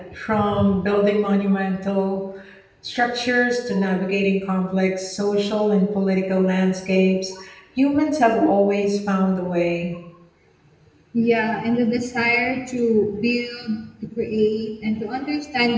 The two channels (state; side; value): identical; both; correlation 1.00